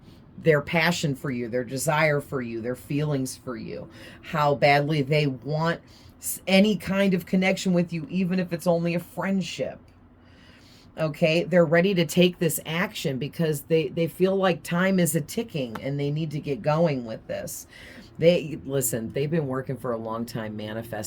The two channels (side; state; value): both; identical; correlation 1.00